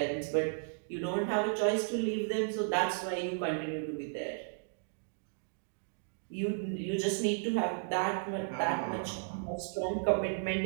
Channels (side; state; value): left; silent; digital silence